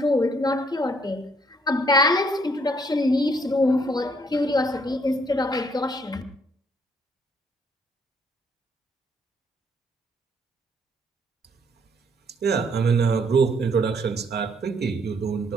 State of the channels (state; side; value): normal; both; correlation 0.67